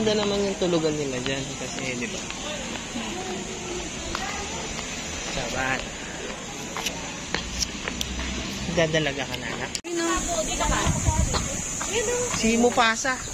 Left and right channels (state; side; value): identical; both; correlation 1.00